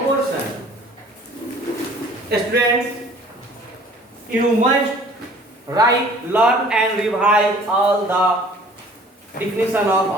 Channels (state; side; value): normal; both; correlation 0.51